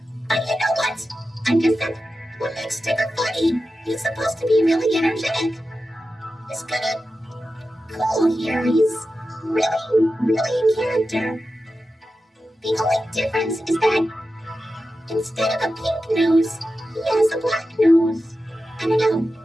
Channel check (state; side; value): normal; both; correlation 0.92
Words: But you know what? I guess that's what makes Tigger funny. He's supposed to be really energetic. He's kinda cool here. He's really in character. The only difference is that instead of a pink nose, he has a black nose. I don't know,